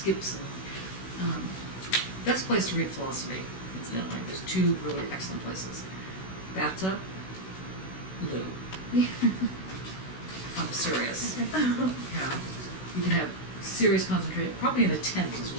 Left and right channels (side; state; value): right; late; 16 ms